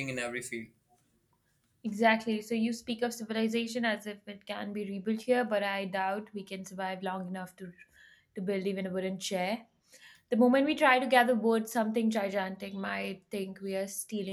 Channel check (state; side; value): identical; both; correlation 1.00